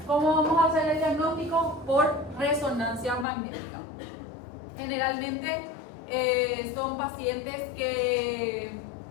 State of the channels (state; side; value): drops out; right; at 3.2 s